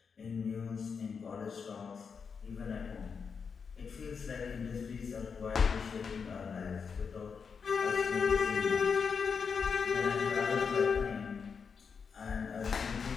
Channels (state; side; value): quieter; right; 5.9 dB